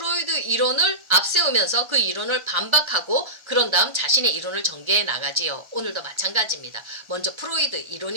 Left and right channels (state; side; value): late; left; 1.3 ms